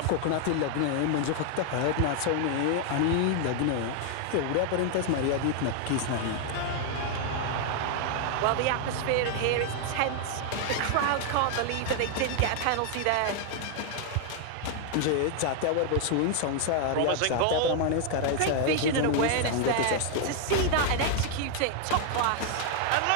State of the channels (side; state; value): both; different; correlation 0.00